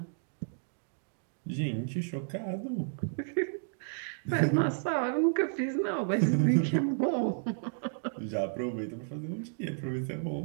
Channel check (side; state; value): left; silent; digital silence